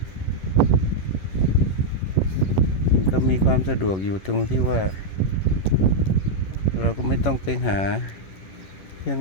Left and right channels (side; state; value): right; late; 11 ms